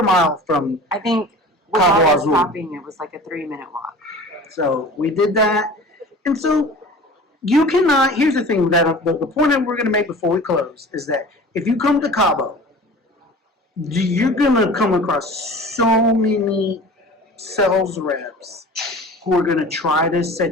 mile from I think Cabo without us Azul. stopping, it was like a 3-minute walk. So we did that, and so you cannot. Here's the thing that the point that we're going to make before we close is that if you come to Cabo, you're going to come across so many sales reps who are going to try to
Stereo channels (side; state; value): both; normal; correlation 0.40